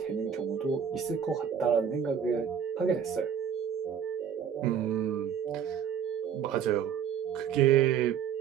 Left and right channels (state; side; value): quieter; left; 8.2 dB